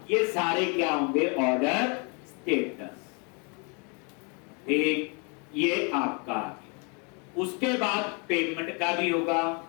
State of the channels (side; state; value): right; quieter; 34.8 dB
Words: ये सारे क्या होंगे? Order status. ठीक, ये आपका। उसके बाद पेमेंट का भी होगा।